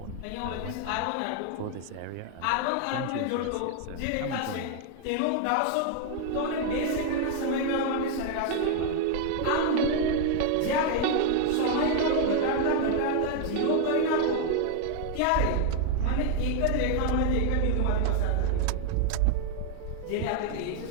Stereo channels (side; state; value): both; different; correlation 0.00